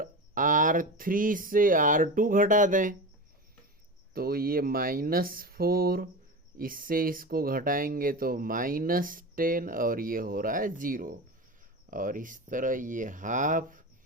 R3 से R2 घटा दें तो ये -4, इससे इसको घटाएंगे तो -10, और ये हो रहा है 0। और इस तरह ये हाफ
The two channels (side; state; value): both; normal; correlation 0.26